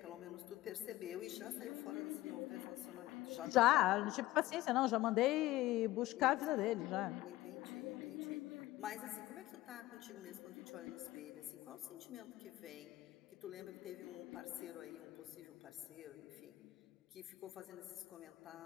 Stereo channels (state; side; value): quieter; right; 17.0 dB